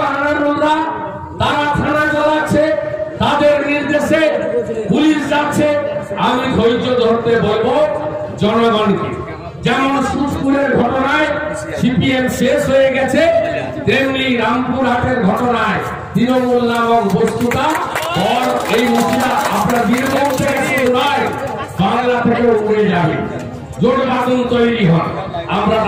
আনারুলরা তারা থানা চালাচ্ছে, তাদের নির্দেশে পুলিশ যাচ্ছে। আমি ধৈর্য ধরতে বলবো জনগণকে। যেমন সুজপুরের ঘটনায় সিপিএম শেষ হয়ে গেছে, তেমনি রামপুরহাটের ঘটনায় তৃণমূল নামক বস্তুটা এই মুখিয়া আপনার বীরভূম থেকে নয়, বাংলা থেকে উড়ে যাবে। জোট বাঁধন তৈরি হয়। আমরা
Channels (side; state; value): both; identical; correlation 1.00